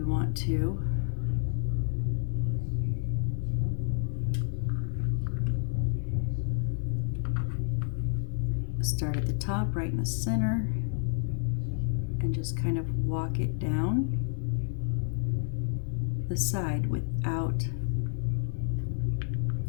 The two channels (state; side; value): silent; right; digital silence